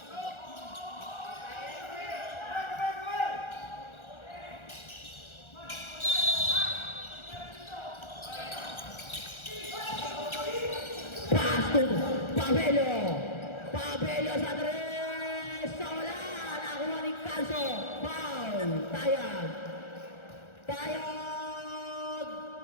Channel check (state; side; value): late; right; 1.4 ms